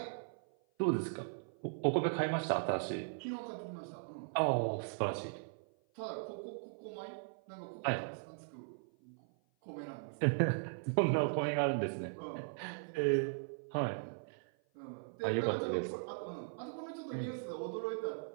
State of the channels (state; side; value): silent; left; 52 dB below the other